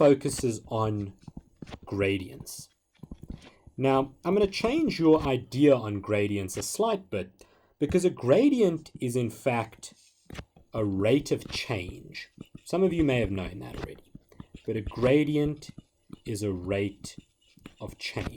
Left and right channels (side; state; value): both; identical; correlation 1.00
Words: on gradients. Now, I'm going to change your idea on gradients a slight bit, because a gradient is in fact a rate of change. Some of you may have known that already, but a gradient is a rate of